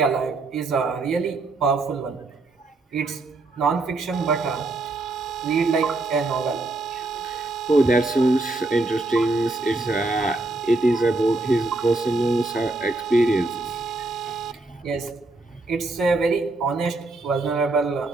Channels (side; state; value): left; quieter; 3.1 dB